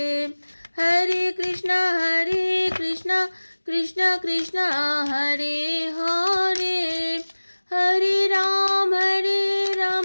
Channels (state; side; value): inverted; both; correlation -1.00